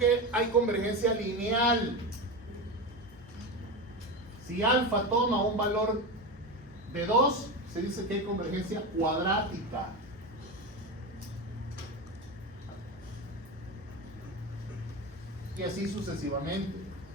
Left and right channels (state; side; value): normal; both; correlation 0.20